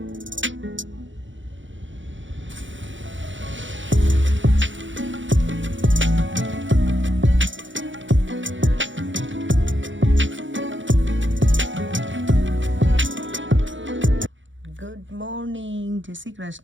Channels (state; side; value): late; left; 0.55 ms